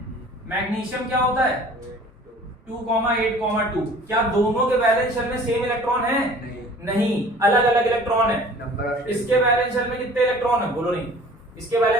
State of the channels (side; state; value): both; normal; correlation 0.48